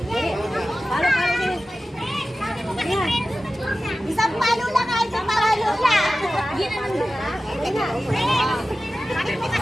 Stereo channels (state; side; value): normal; both; correlation 0.95